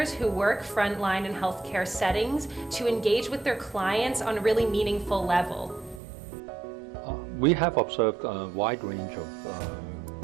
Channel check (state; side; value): drops out; left; at 6.0 s